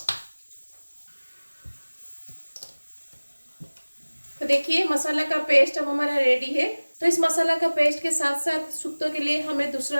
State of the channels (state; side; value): inverted; both; correlation -1.00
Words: तो देखिए मसाला का पेस्ट अब हमारा रेडी है। तो इस मसाला का पेस्ट के साथ साथ शुक्तो के लिए हमें